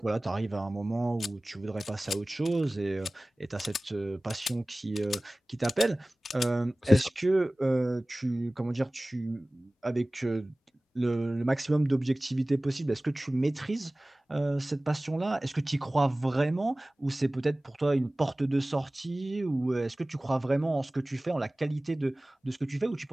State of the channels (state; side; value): normal; both; correlation 0.98